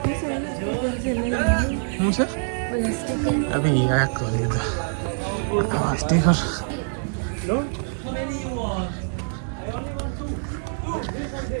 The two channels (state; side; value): silent; left; 62 dB below the other